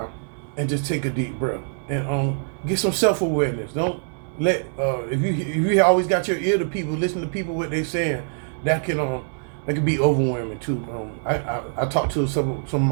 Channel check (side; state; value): left; silent; digital silence